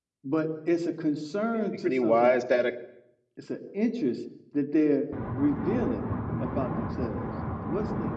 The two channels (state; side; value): identical; both; correlation 1.00